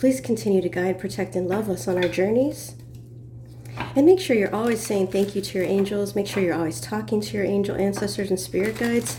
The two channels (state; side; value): identical; both; correlation 1.00